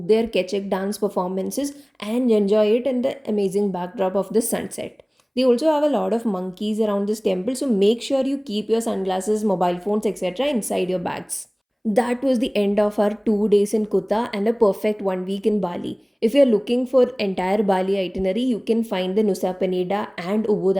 their Kechak dance performances and enjoy it in the amazing backdrop of the sunset. They also have a lot of monkeys around this temple, so make sure you keep your sunglasses, mobile phones, etc. inside your bags. That was the end of our 2 days in Kuta and a perfect 1 week in Bali. If you're looking for entire Bali itinerary, you can find the Nusa Penida and Ubud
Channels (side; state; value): both; identical; correlation 1.00